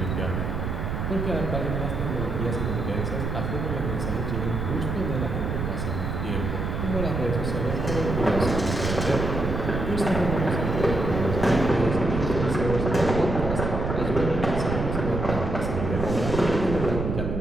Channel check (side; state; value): right; noise; rumble, 2 dB below the sound